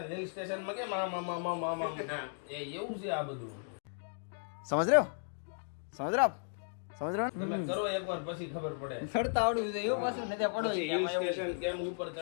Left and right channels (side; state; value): right; silent; digital silence